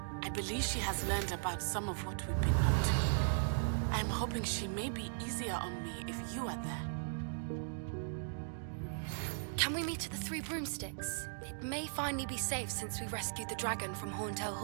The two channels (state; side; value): silent; left; digital silence